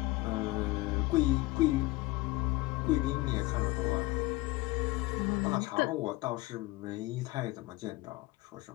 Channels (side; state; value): right; quieter; 20.8 dB